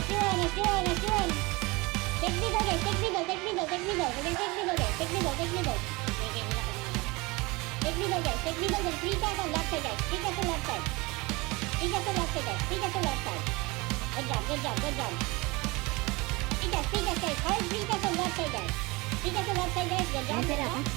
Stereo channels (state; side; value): quieter; left; 24.3 dB